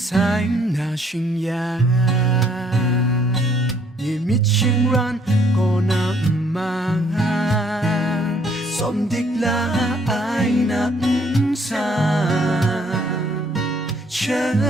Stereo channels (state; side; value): normal; both; correlation 0.64